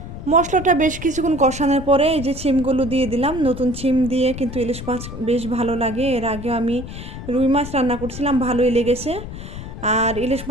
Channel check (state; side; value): noise; left; rumble, 10 dB below the sound